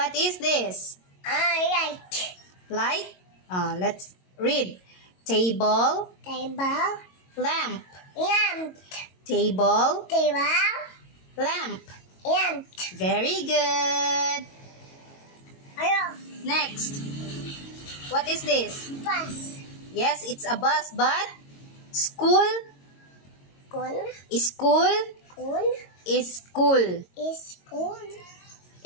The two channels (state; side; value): late; right; 22 ms